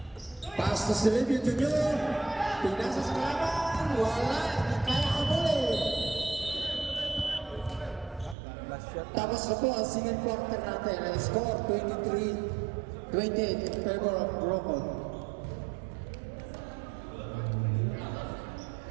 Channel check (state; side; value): drops out; left; at 8.3 s